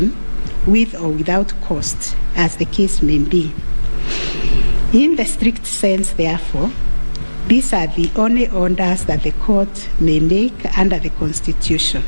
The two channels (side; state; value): both; inverted; correlation -1.00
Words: with or without cost, as the case may be. In the strict sense, therefore, these are the only orders that the court may make under the Constitution.